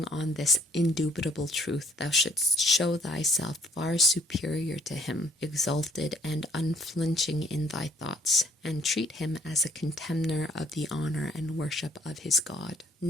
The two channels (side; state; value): both; normal; correlation 0.62